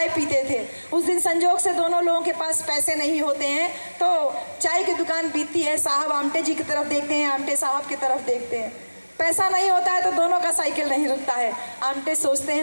पीते थे। उस दिन संजोग से दोनों लोगों के पास पैसे नहीं होते हैं, तो चाय की दुकान बीतती है। साहब आमटे जी की तरफ देखते हैं, आमटे साहब की तरफ देखते हैं। पैसा नहीं होता है तो दोनों का साइकिल नहीं रुकता है। आमटे सोचते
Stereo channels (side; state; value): both; inverted; correlation -1.00